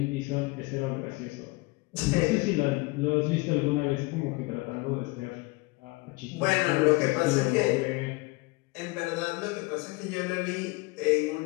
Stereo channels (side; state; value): right; quieter; 24.7 dB